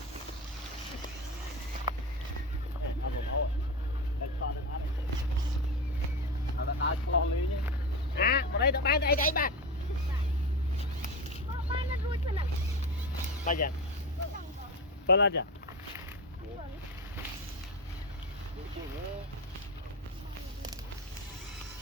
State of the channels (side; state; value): both; normal; correlation 0.22